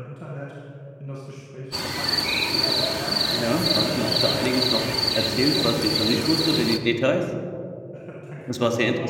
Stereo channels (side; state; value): both; identical; correlation 1.00